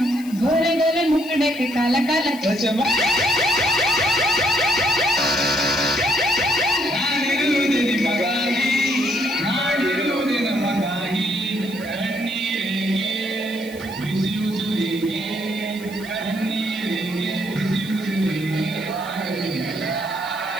गोरे गोरे मुकुटे को काला काला.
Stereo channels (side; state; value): left; noise; hiss, 19 dB below the sound